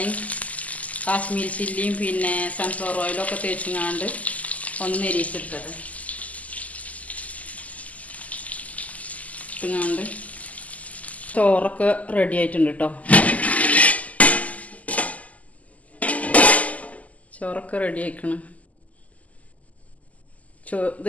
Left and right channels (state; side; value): late; right; 0.073 ms